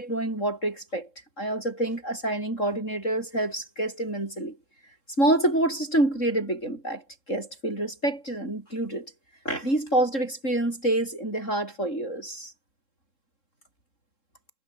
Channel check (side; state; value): right; late; 3.7 ms